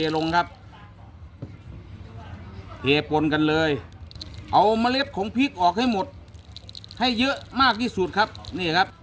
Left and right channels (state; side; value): identical; both; correlation 1.00